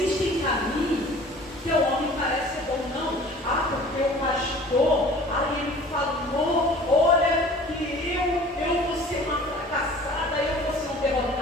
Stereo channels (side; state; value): both; normal; correlation 0.46